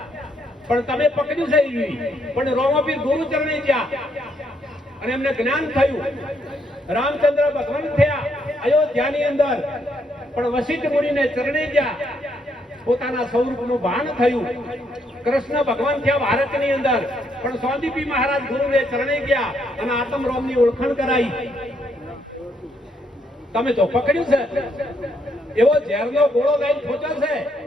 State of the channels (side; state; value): both; normal; correlation 0.74